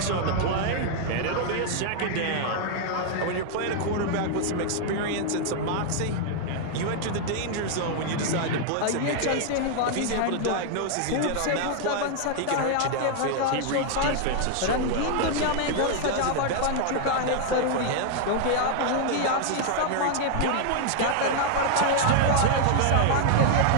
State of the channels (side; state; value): both; different; correlation 0.00